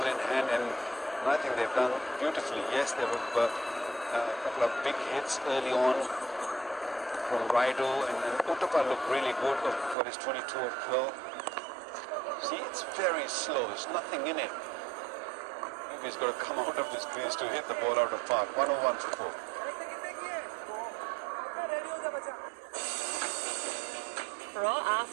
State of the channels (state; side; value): drops out; left; at 10.0 s